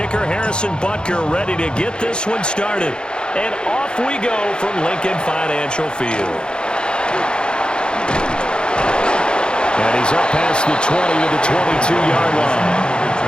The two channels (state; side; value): late; right; 0.050 ms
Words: Harrison Butker, ready to get this one started. And off we go from Lincoln Financial Field. And he's up past the 20 to the 22-yard line.